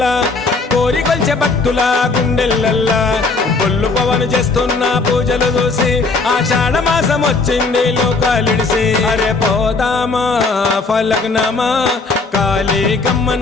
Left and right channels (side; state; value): right; quieter; 3.9 dB